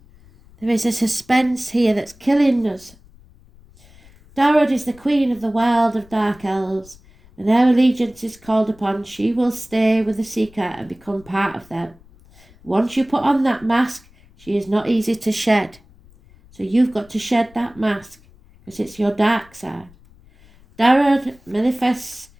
There is a suspense here that's killing us. Darod is the queen of the world of dark elves, and her allegiance is called upon. She will stay with the seeker and become part of them. Once you put on that mask, she is not easy to shed. So you've got to shed that mask, because it's your dark side. Darod manifests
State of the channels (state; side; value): noise; left; rumble, 26 dB below the sound